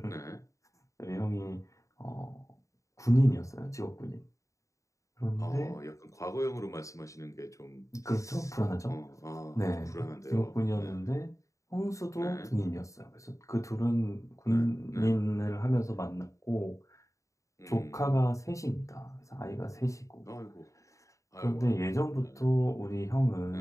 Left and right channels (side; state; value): right; late; 0.15 ms